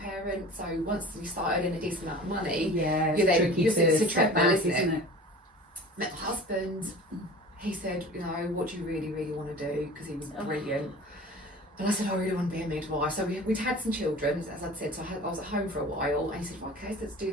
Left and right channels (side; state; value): both; normal; correlation 0.40